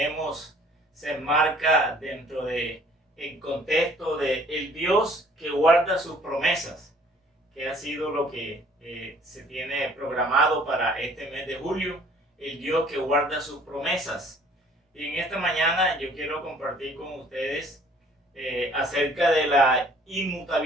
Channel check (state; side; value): normal; both; correlation 0.56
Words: se enmarca dentro de el contexto de el Dios que guarda sus promesas, que ha sido lo que se tiene programado para este mes de julio, el Dios que guarda sus promesas. Y en esta mañana yo quiero compartir con ustedes acerca de la